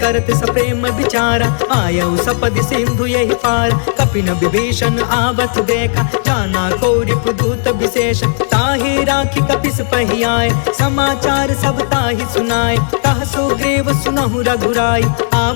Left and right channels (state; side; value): silent; right; digital silence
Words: सप्रेम विचारा, आयऊ सपदि सिंधु यही पार। कपिन विभीषण आवत देखा, जाना को रिपुदूत विशेष। ताहि राखी कपिस पहियाए, समाचार सब ताहि सुनाए। कह सुग्रीव सुनहु रघुराई,